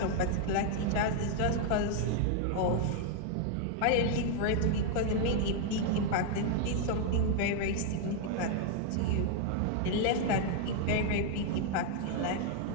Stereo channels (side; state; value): both; different; correlation 0.00